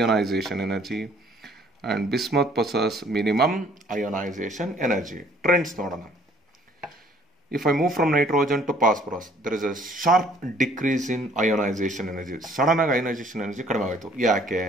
energy and bismuth possesses minimum ionization energy. Trends nodana. If I move from nitrogen to phosphorus, there is a sharp decrease in ionization energy. Sudden ionization energy kadime ayitu. Yake?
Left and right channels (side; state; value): both; normal; correlation 0.59